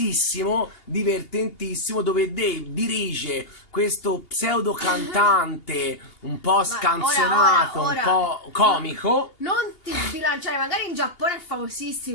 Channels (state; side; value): late; right; 2.8 ms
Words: divertentissimo, dove Dave dirige questo pseudo cantante un po' scanzonato, ora, un po' comico. Non ti sbilanciare, magari in Giappone è